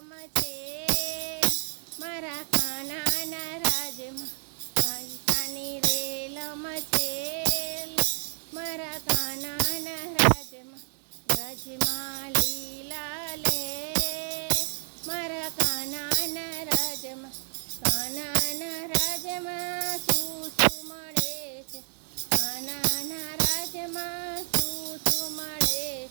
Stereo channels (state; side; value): silent; left; 55 dB below the other